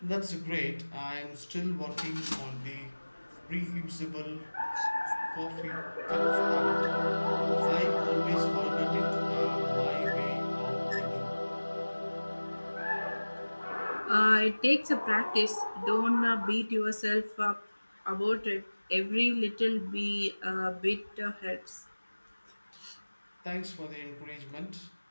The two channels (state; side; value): inverted; both; correlation -1.00